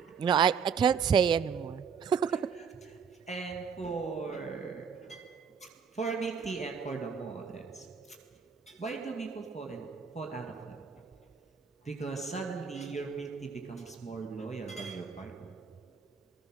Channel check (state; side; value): quieter; left; 6.4 dB